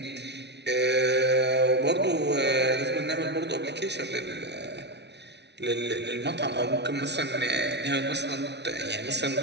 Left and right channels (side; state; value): left; late; 0.50 ms